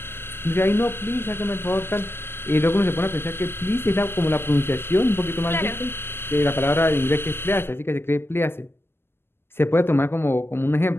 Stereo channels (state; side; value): late; right; 0.11 ms